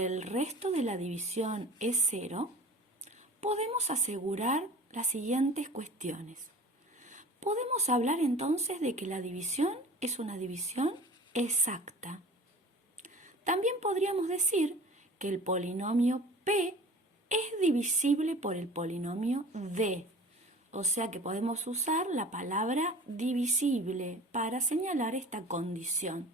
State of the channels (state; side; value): normal; both; correlation 0.42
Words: el resto de la división es 0, podemos asegurar las siguientes cuestiones. Podemos hablar entonces de que la división es una división exacta. También podríamos decir que el polinomio p es divisible por el polinomio d. O sea que podemos usar la palabra divisible para señalar esta condición